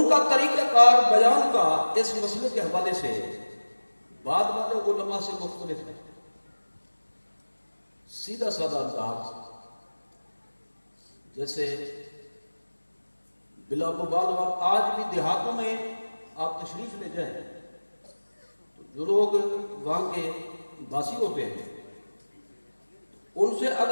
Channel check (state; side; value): inverted; both; correlation -1.00